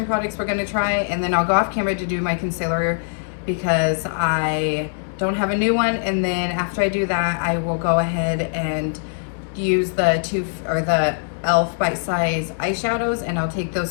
products we're going to try, and then I'll go off camera to do my concealer because I don't have a new one. And then after I do that, I will go ahead and use the e.l.f. Bite Size eyeshadows, and I'll take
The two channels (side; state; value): right; silent; digital silence